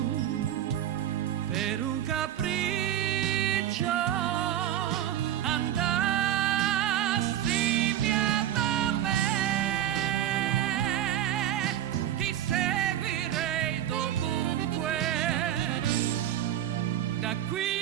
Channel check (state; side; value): quieter; left; 11.6 dB